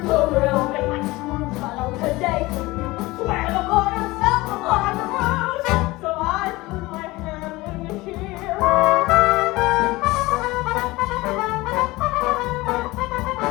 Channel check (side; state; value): right; quieter; 20.6 dB